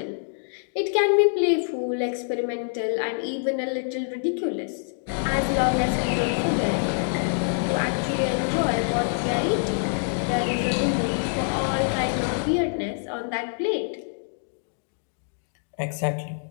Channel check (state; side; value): silent; right; digital silence